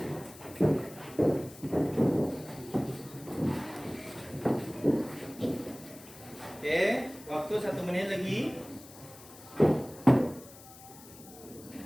Oke, waktu 1 menit lagi.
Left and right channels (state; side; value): noise; left; hiss, 19 dB below the sound